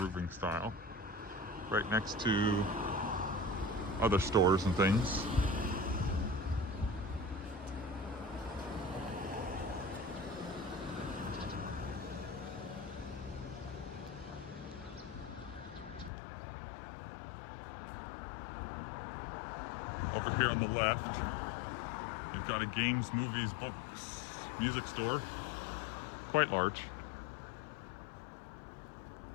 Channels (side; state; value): right; drops out; at 16.1 s